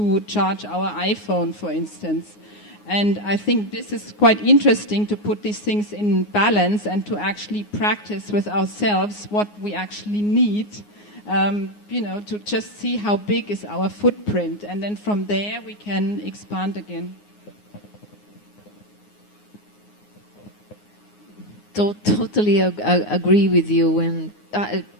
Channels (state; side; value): late; right; 9.6 ms